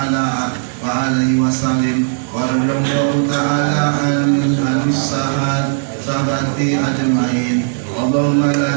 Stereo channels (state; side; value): silent; left; digital silence